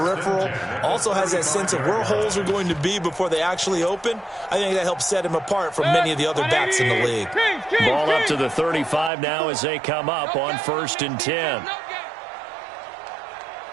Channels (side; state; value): left; drops out; at 9.1 s